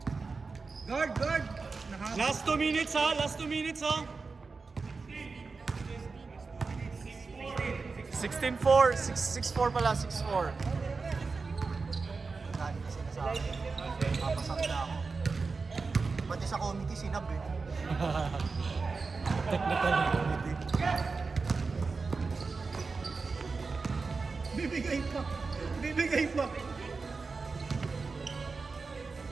Guard! Guard! Naka- Last 2 minutes ha, last 2 minutes ha. 16-4, 6-4 pala, 6-4. Dahil kasi nasa akin. Papasak na ako. Pati sa committee sinab eh. Technical committee. Bibigay pa! Bibigay pa!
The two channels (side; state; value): left; quieter; 4.4 dB